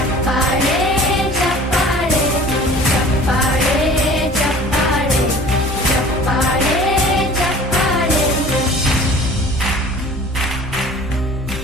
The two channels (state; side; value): normal; both; correlation 0.46